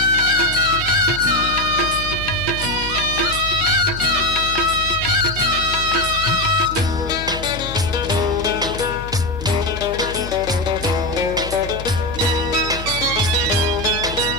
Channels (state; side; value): noise; left; hum, 10 dB below the sound